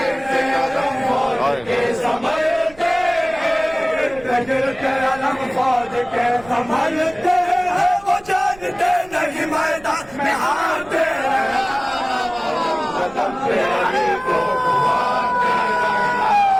گرتے علم فوج کے سنبھلتے ہیں وہ جانتے نہیں میدان میں ہارتے قدم پہ علی کو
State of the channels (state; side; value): noise; right; rumble, 23 dB below the sound